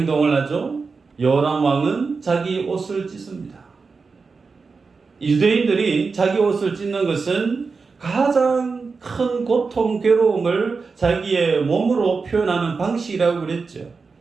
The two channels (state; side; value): quieter; left; 4.7 dB